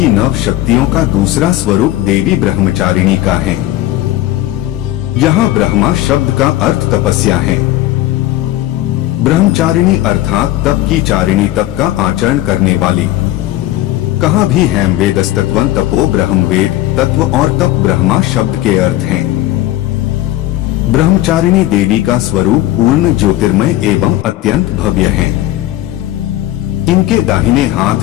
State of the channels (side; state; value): right; quieter; 15.2 dB